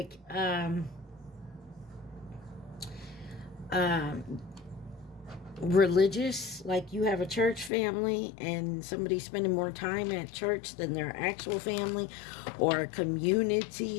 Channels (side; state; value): right; drops out; at 7.7 s